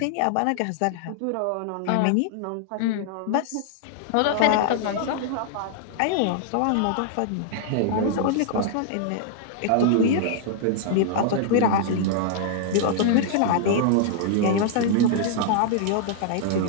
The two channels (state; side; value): different; both; correlation -0.01